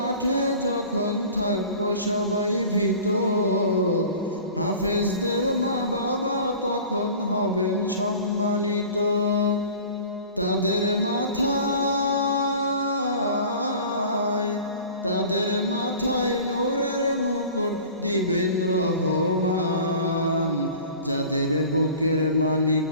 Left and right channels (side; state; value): both; inverted; correlation -0.42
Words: যখন থাকবো সবাই ভীত, হাফেজদের মা বাবা তখন হবেন সম্মানিত। তাদের মাথায় নূরের মুকুট দিবেন রহমান, যাদের বুকের মানিক